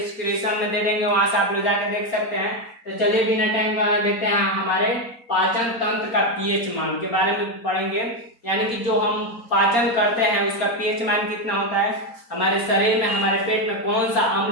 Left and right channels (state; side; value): late; right; 4.3 ms